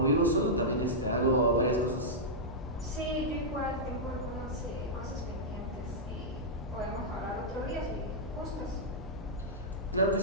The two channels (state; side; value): normal; both; correlation -0.09